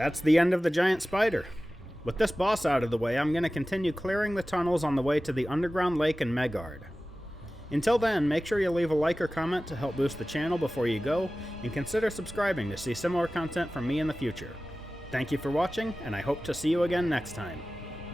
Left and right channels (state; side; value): normal; both; correlation 0.96